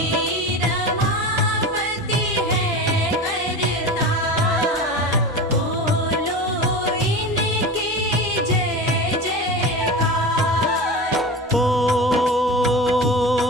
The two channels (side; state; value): both; normal; correlation 0.29